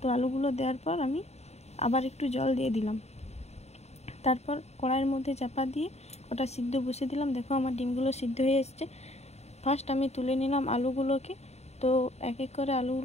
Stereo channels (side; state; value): right; late; 0.31 ms